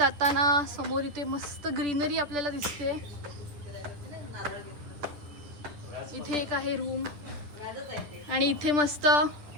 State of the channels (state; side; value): late; left; 10 ms